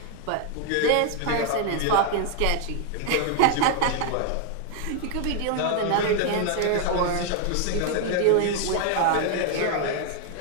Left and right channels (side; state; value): both; different; correlation 0.00